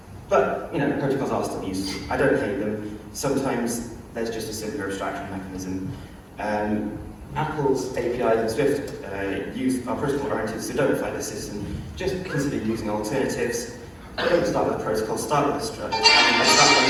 But, protocols are still useful. I don't hate them. Sometimes there's just a simpler abstraction mechanism. Apple's APIs and Swift are protocol-oriented, so don't fight the system. Just consider using alternatives. Don't start with a protocol, start with a struct. Start when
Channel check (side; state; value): both; identical; correlation 1.00